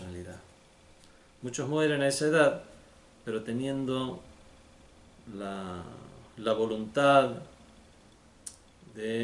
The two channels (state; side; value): identical; both; correlation 1.00